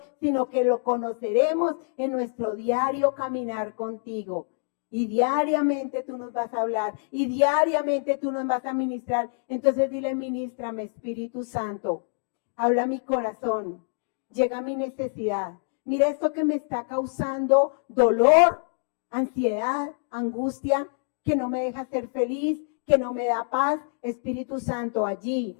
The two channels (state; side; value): silent; right; digital silence